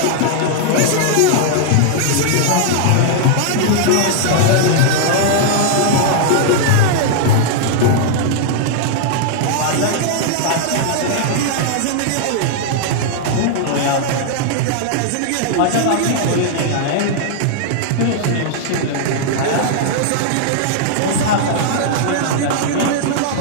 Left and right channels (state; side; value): different; both; correlation -0.01